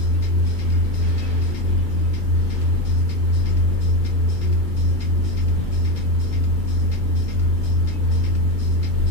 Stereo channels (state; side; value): late; left; 2.3 ms